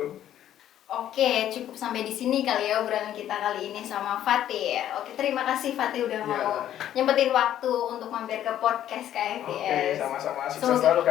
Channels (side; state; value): right; quieter; 11.4 dB